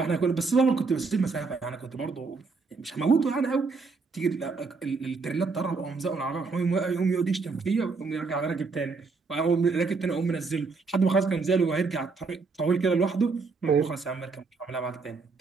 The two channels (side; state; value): left; quieter; 4.4 dB